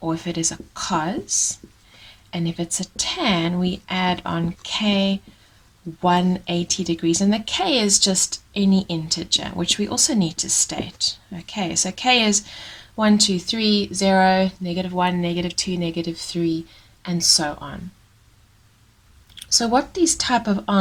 or if it is a cos, and if it's a tan we add on k 180 degrees, and the k is just any integer, which we also need to state. Okay, so k is 1, 2, 3, 0, -1, -2, -3, and so on. So what these type of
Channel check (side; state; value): both; identical; correlation 1.00